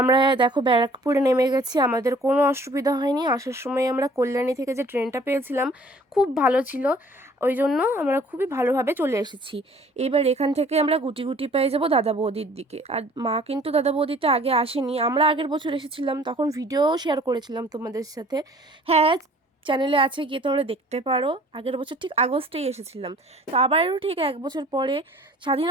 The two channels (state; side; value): normal; both; correlation 0.53